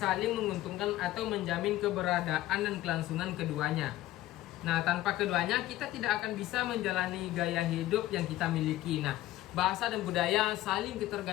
menguntungkan atau menjamin keberadaan dan kelangsungan keduanya. Nah, tanpa keduanya kita tidak akan bisa menjalani gaya hidup yang kita miliki. Nah, bahasa dan budaya saling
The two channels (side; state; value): right; quieter; 15.6 dB